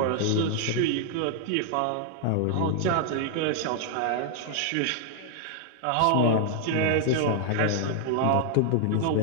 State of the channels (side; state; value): both; different; correlation 0.00